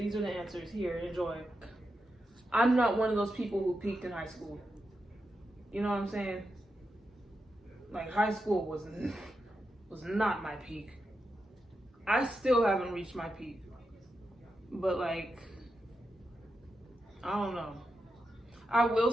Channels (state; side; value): normal; both; correlation 0.87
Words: are the answers. Here, enjoy. I'm not one of those people who peaked in high school. You know what I'm saying? Like, high school was not my peak. I still haven't reached my peak. But, like, I don't know. I will